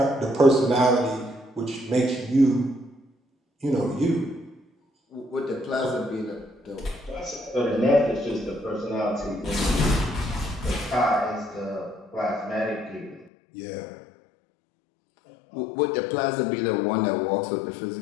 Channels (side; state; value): right; drops out; at 13.3 s